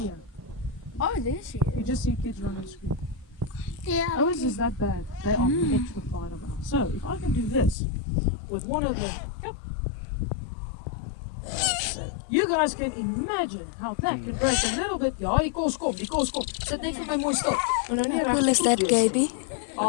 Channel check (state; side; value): drops out; right; at 7.8 s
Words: Oh, there she you just see kids run and scream. Yeah. How is this that bad? They are petrified of us. So if I can do this with one of them, yep. You guys can imagine how that can break a little bit. Ja, die kos kom. Sit net vir my mooi stil. Maar nou nie How cool is that, Gaby?